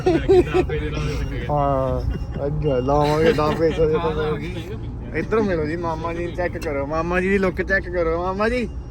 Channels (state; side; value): identical; both; correlation 1.00